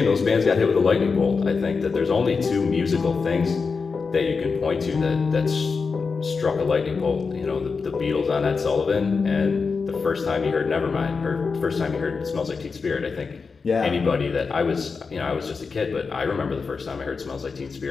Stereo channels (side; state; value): right; quieter; 4.9 dB